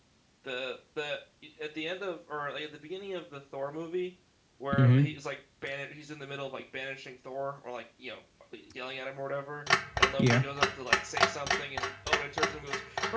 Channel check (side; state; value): both; identical; correlation 1.00